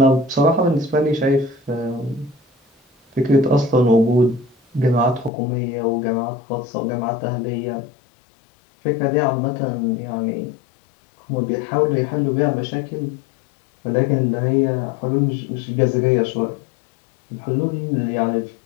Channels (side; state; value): right; drops out; at 5.3 s